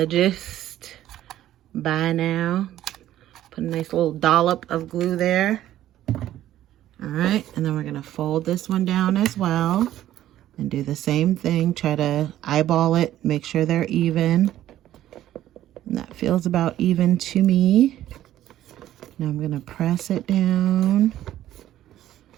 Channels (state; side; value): quieter; left; 12.9 dB